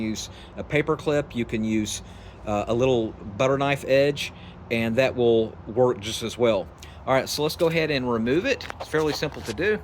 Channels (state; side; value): identical; both; correlation 1.00